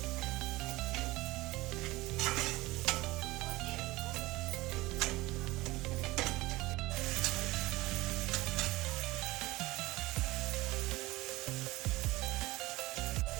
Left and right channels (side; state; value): left; quieter; 19.7 dB